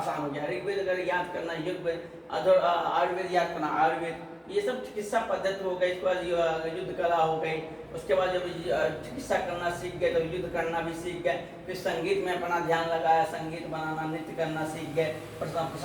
हो गया। ऋग्वेद अगर याद करना, यजुर्वेद, आयुर्वेद याद करना, आयुर्वेद, ये सब चिकित्सा पद्धति हो गई। इसके बाद युद्ध कला हो गई। उसके बाद जब चिकित्सा करना सीख गए तो युद्ध करना भी सीख गए। फिर संगीत में अपना ध्यान लगाया, संगीत बनाना, नृत्य करना सीख गए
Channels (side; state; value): both; identical; correlation 1.00